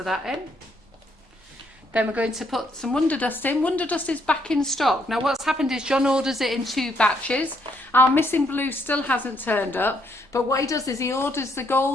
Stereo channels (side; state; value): both; normal; correlation 0.72